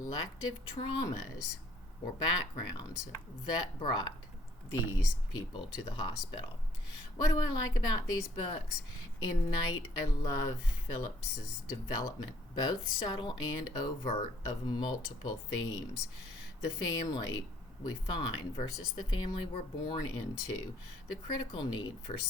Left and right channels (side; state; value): both; normal; correlation 0.62